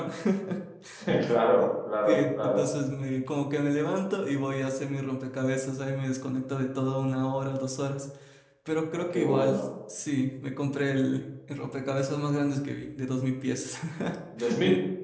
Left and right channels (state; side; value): identical; both; correlation 1.00